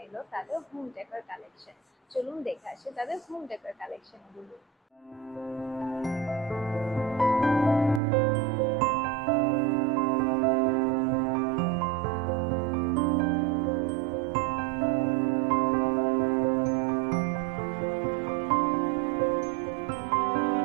এলো তাদের হোম ডেকোর কালেকশন। চলুন দেখে আসি তাদের হোম ডেকোর কালেকশন গুলো।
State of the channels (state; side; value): drops out; left; at 8.0 s